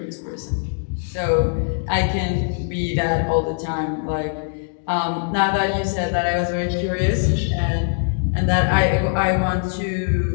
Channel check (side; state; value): right; silent; 65 dB below the other